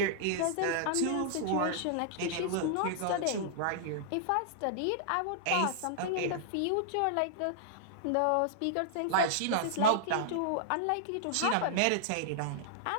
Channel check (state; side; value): different; both; correlation -0.01